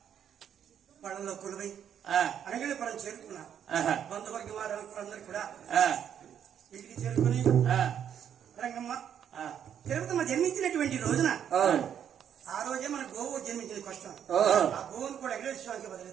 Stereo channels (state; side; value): quieter; left; 9.0 dB